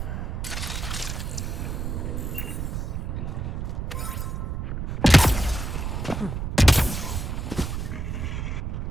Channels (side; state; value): right; noise; rumble, 3 dB below the sound